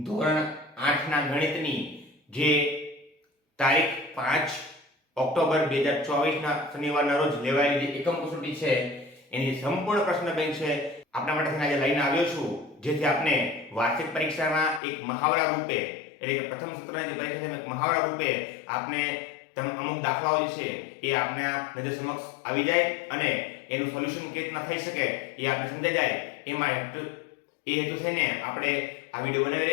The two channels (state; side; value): drops out; right; at 14.8 s